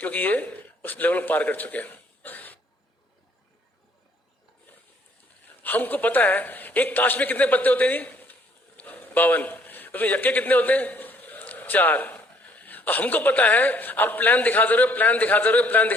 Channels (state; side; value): normal; both; correlation 0.62